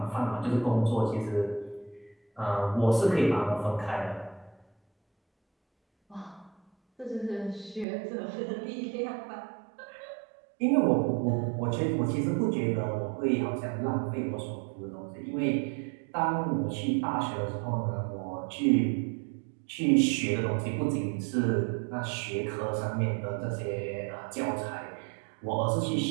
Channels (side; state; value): left; drops out; at 7.9 s